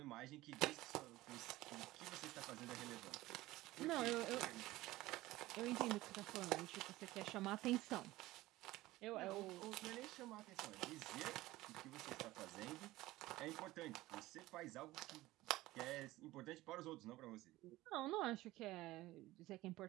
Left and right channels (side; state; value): left; quieter; 17.7 dB